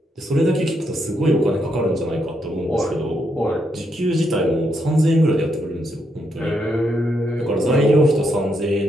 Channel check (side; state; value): both; normal; correlation 0.79